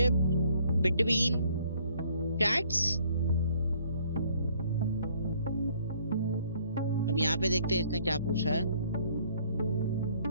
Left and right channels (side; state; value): both; inverted; correlation -0.62